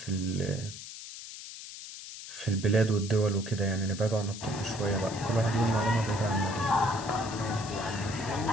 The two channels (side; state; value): left; noise; hiss, 12 dB below the sound